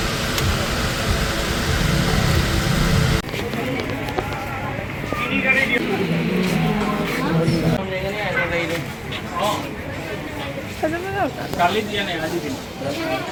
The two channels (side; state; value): both; identical; correlation 1.00